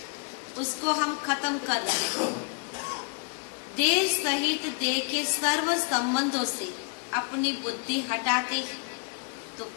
उसको हम खत्म कर रहे हैं। देह सहित देह के सर्व संबंधों से अपनी बुद्धि हटाते हैं तो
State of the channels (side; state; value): right; quieter; 38.8 dB